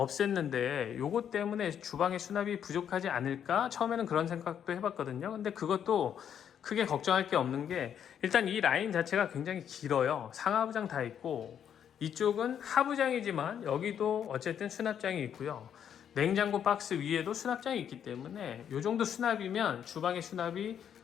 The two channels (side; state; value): right; quieter; 8.8 dB